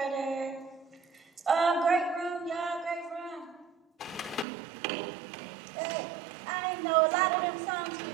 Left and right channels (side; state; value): left; drops out; at 4.5 s